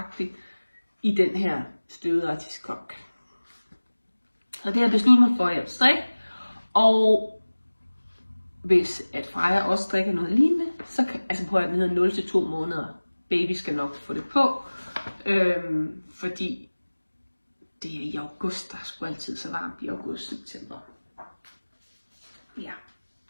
i den her støvede artiskok. Så det har jeg besluttet mig for, at jeg vil strikke. Og hvis at Freja også strikker noget lignende, så kan, altså prøv at den hedder 0 til 2 måneder. Baby skal nok få det på. Fordi det er i august, der er sgu altid så varmt i august-september. Ja.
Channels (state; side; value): inverted; both; correlation -1.00